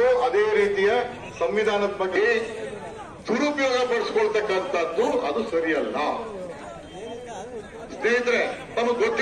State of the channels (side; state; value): both; identical; correlation 1.00